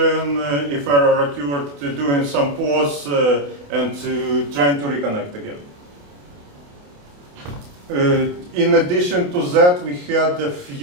if error occurred, doing some pause, and trying to reconnect again. In addition to that, we had a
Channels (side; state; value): left; late; 28 ms